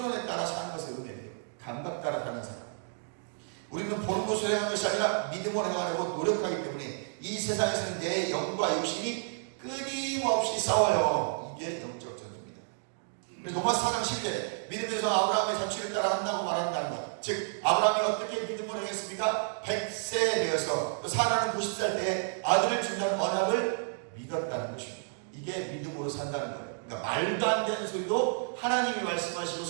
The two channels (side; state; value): left; silent; digital silence